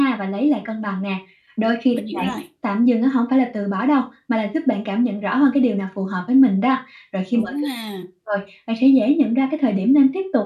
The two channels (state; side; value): identical; both; correlation 1.00